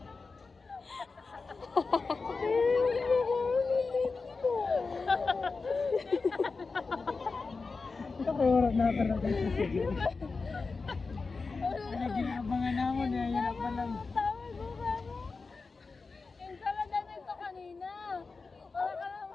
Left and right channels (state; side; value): quieter; right; 4.3 dB